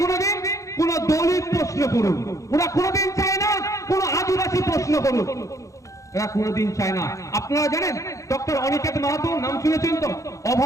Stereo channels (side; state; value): right; late; 0.15 ms